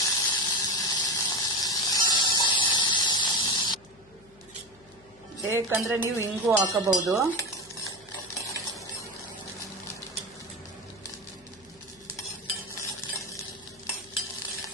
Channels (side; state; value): left; noise; hum, 27 dB below the sound